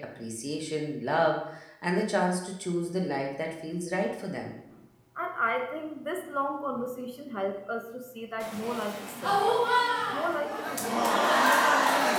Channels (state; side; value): identical; both; correlation 1.00